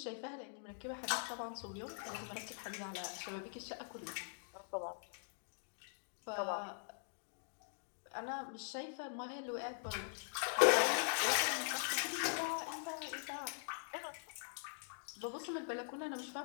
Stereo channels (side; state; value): right; silent; digital silence